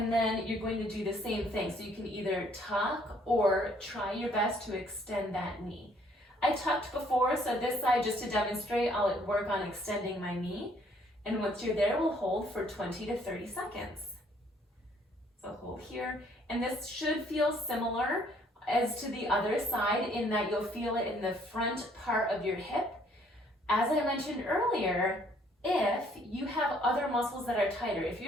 then you're going to do the same thing. So you can either tuck or try your best to extend that knee. I tucked before, so this side, just to demonstrate, I'll work on extending my knee. And once you're there, we'll hold for 20 to 30 seconds. So hold here, and this should feel similar as to the other side in that you'll feel it in the front part of your hip. As I mentioned earlier, if you have other muscles that are tighter, if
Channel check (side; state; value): both; normal; correlation 0.63